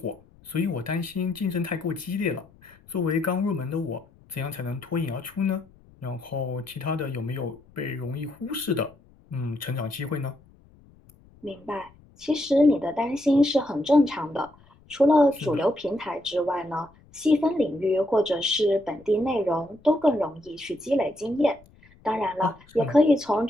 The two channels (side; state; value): left; noise; rumble, 27 dB below the sound